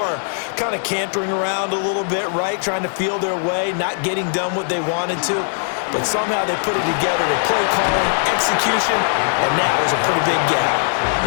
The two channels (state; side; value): silent; right; digital silence